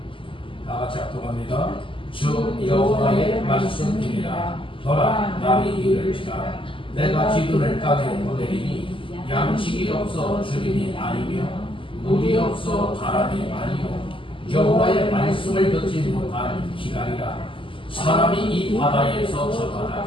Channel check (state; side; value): late; right; 0.25 ms